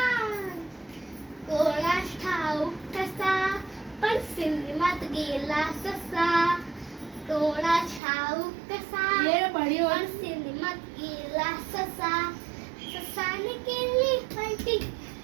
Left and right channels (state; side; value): drops out; left; at 8.0 s